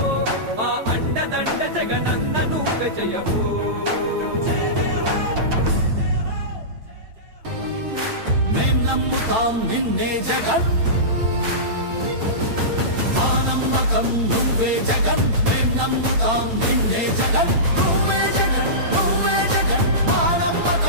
మా అండదండ జగనన్న నువ్వే జయ హో. మేం నమ్ముతాం నిన్నే జగన్, మా నమ్మకం నువ్వే జగన్. మేం నమ్ముతాం నిన్నే జగన్, నువ్వే జగన్, నువ్వే జగన్. మా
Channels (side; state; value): left; late; 8.9 ms